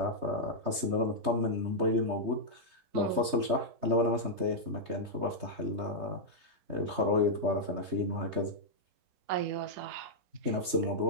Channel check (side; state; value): left; late; 3.2 ms